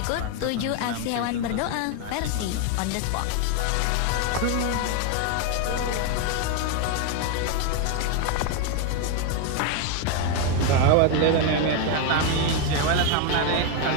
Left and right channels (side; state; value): both; different; correlation 0.01